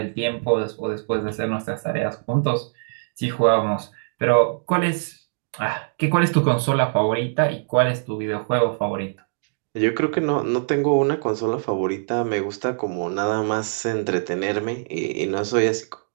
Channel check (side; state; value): left; silent; digital silence